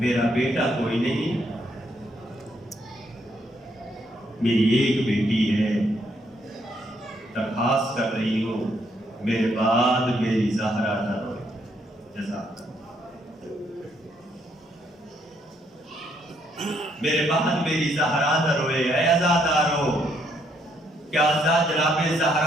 بیٹا کوئی نہیں، میری ایک بیٹی ہے، درخواست کر رہی ہوں میرے بعد میری زہرا نہ روئے. جزاک میرے بعد میری زہرا نہ روئے. اے عزادارو، کیا جناب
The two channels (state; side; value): normal; both; correlation 0.72